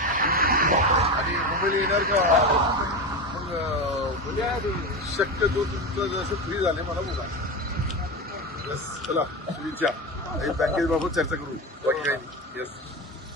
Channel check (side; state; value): both; normal; correlation 0.21